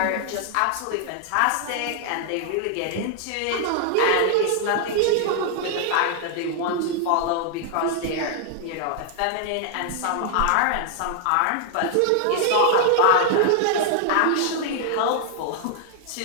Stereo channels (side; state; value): both; different; correlation 0.00